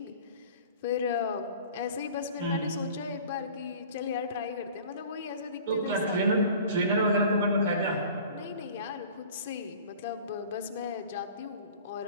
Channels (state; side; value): inverted; both; correlation -0.44